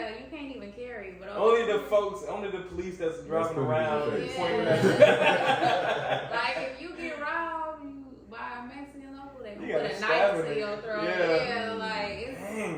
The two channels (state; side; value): identical; both; correlation 1.00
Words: you can't even carry. But Only the police that's driving around pretty pointing good. at like if you get robbed by a Mexican local, they You gonna gotta put a stab knife it. to your throat. Yeah. Yeah, like it's,